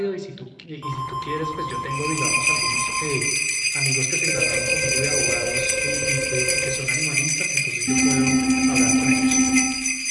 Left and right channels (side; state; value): both; identical; correlation 1.00